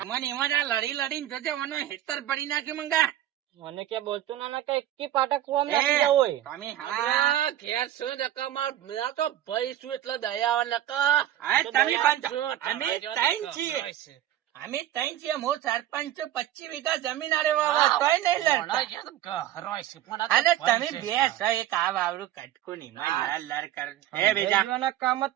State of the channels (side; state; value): left; quieter; 12.6 dB